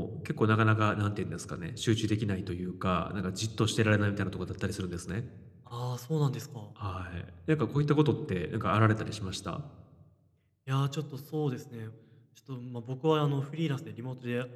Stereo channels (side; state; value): both; identical; correlation 1.00